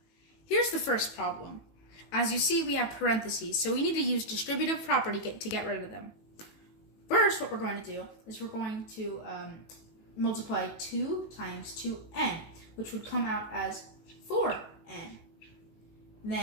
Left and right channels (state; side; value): late; right; 18 ms